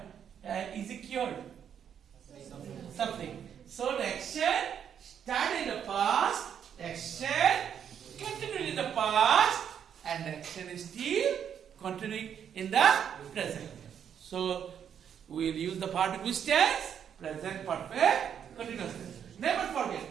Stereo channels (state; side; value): quieter; left; 8.5 dB